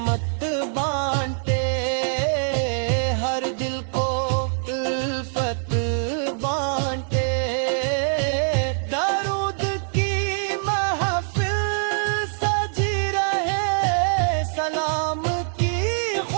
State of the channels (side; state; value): left; silent; digital silence